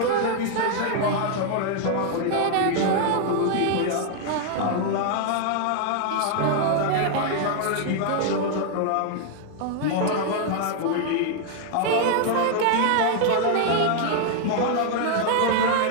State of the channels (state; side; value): different; both; correlation 0.00